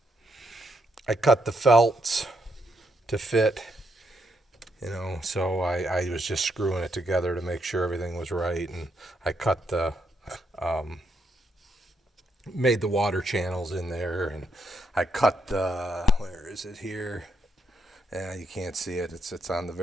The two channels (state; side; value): normal; both; correlation 0.78